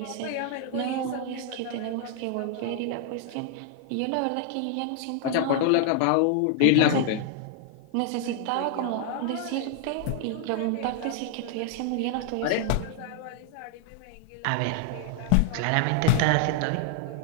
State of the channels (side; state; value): both; different; correlation 0.00